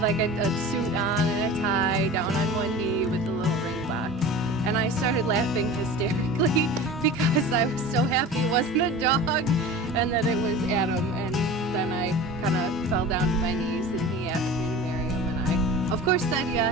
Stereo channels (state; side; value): normal; both; correlation 0.36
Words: like a suit on and a tie, down on one knee with a little ring box. And I started laughing hysterically because I was so happy it wasn't a dog and that it was Adam. And then I kind of fell down to my knees and he asked me to marry him. And I, of course, said